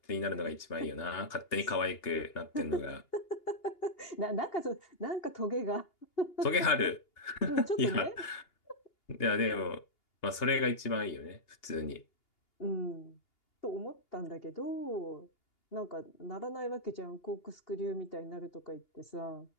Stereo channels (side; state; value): right; late; 2.8 ms